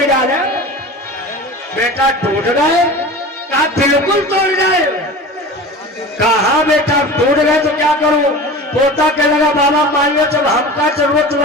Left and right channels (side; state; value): both; normal; correlation 0.35